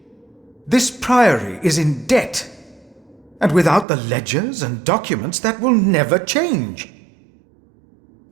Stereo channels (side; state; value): left; drops out; at 3.9 s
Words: This priory is in debt. And without the ledgers and documents, that will never change.